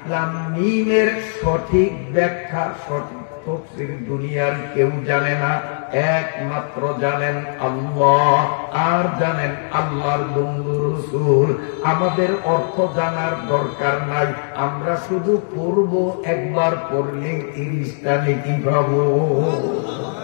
লাম মিমের সঠিক ব্যাখ্যা, সঠিক তাফসীর দুনিয়ার কেউ জানে না, একমাত্র জানেন আল্লাহ, আর জানেন আল্লাহর বন্ধু রাসূল। আমাদের অর্থ জানার দরকার নাই, আমরা শুধু পড়ব, একবার পড়লে 30টা নেকি পাবো।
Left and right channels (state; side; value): silent; right; 66 dB below the other